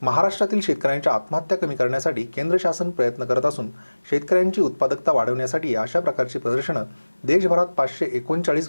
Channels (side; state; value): both; inverted; correlation -1.00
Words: महाराष्ट्रातील शेतकऱ्यांच्या आत्महत्या कमी करण्यासाठी केंद्र शासन प्रयत्न करत असून शेतकऱ्यांची उत्पादकता वाढवण्यासाठी अशा प्रकारची प्रदर्शनं देशभरात 539